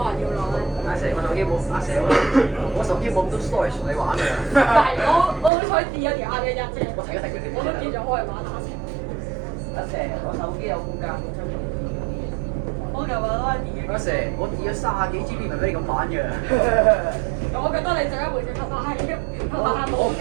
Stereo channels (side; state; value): left; drops out; at 5.5 s